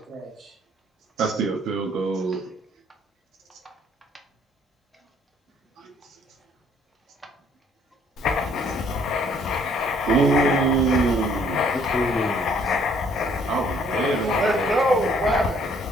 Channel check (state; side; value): normal; both; correlation 0.62